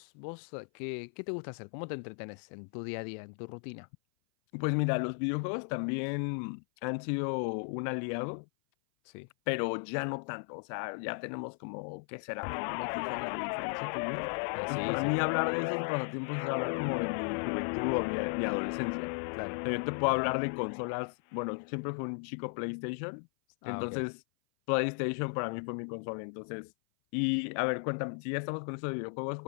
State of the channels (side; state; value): right; silent; 54 dB below the other